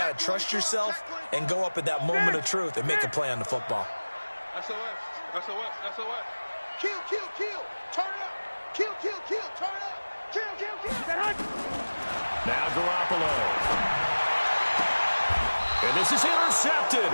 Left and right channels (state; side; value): inverted; both; correlation -1.00